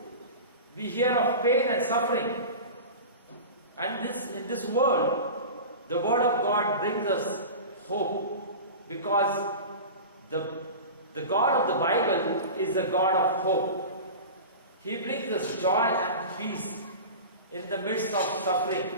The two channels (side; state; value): both; inverted; correlation -0.31